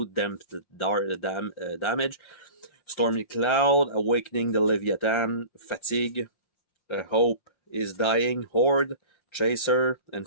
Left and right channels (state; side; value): late; right; 5.7 ms